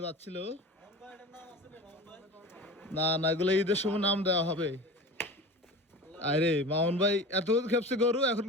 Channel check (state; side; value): normal; both; correlation 0.33